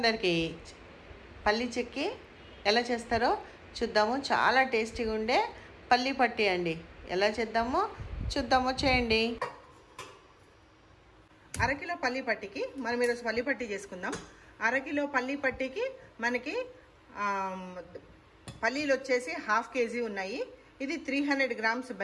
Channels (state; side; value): identical; both; correlation 1.00